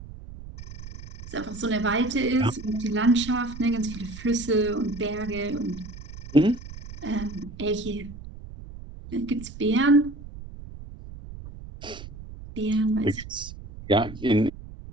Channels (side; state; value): right; noise; rumble, 13 dB below the sound